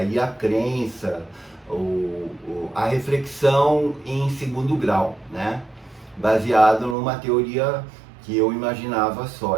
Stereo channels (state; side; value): drops out; left; at 7.0 s